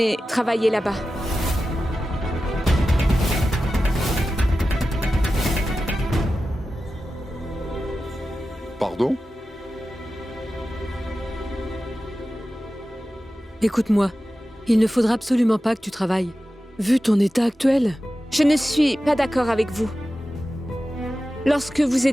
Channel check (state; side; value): normal; both; correlation 0.93